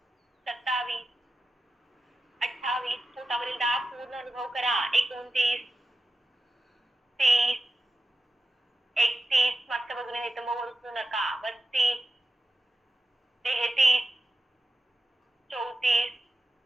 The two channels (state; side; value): normal; both; correlation 0.93